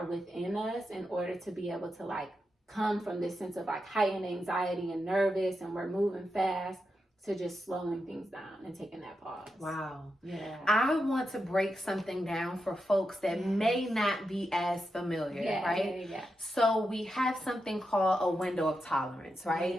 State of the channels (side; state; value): both; normal; correlation 0.87